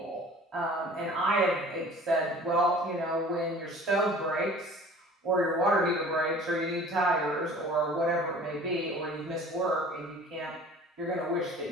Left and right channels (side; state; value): both; normal; correlation 0.46